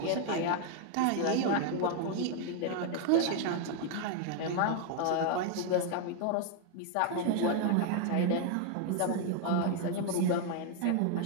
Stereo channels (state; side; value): different; both; correlation 0.00